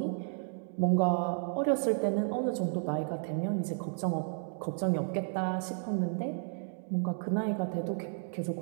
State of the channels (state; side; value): silent; left; digital silence